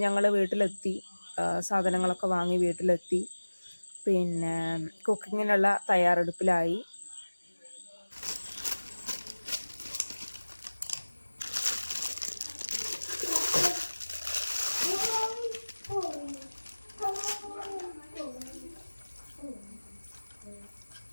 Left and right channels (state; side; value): inverted; both; correlation -1.00